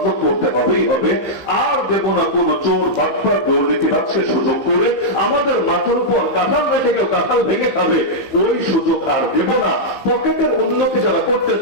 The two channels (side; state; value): right; late; 15 ms